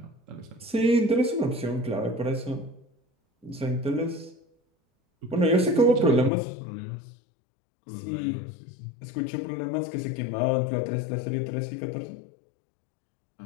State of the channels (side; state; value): right; drops out; at 6.3 s